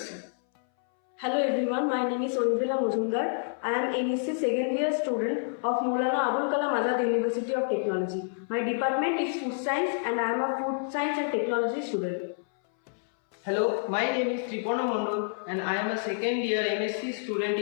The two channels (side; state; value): right; silent; 59 dB below the other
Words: Hello everyone, my name is Onvila Mujumdar. I am NSC second year student of Maulana Abul Kalam Azad University of Technology. My department is food science and I am a food science and technology student. Hello, my name is Tripona Mondol and I am a second year NSC student